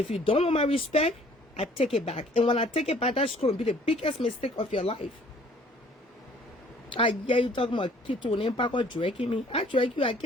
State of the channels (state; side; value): normal; both; correlation 0.56